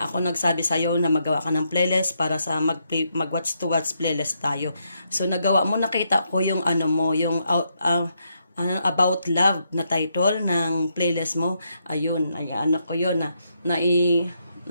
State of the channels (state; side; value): inverted; both; correlation -0.78